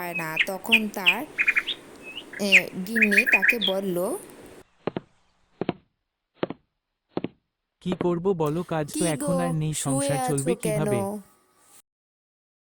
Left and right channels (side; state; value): both; identical; correlation 1.00